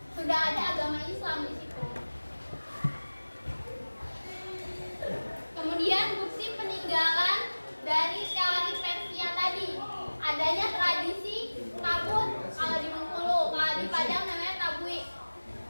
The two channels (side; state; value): both; inverted; correlation -1.00